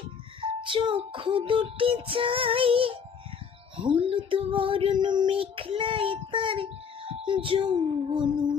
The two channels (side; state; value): right; quieter; 6.6 dB